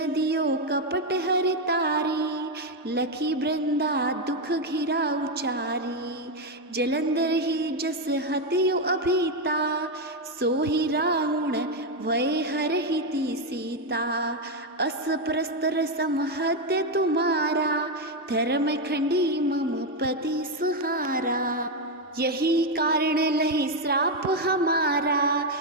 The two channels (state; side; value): normal; both; correlation 0.05